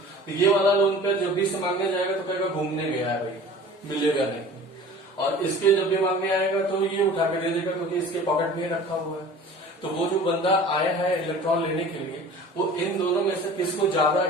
तो ये वाला लोन पेयर जब भी से मांगने जाएगा तो कहेगा घूमने गया है भाई, मिलेगा नहीं। और इसके जब भी मांगने आएगा तो ये उठा के दे देगा क्योंकि इसके पॉकेट में रखा हुआ है। तो वो जो बंदा आया है इलेक्ट्रॉन लेने के लिए, वो इन दोनों में से किसको ज्यादा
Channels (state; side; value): normal; both; correlation 0.42